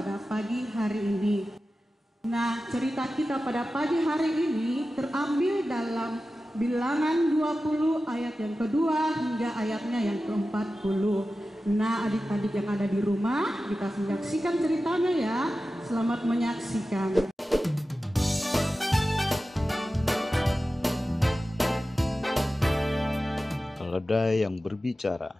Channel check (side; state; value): both; normal; correlation 0.94